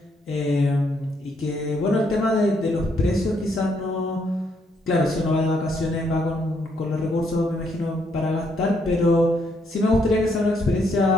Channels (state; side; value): normal; both; correlation 0.73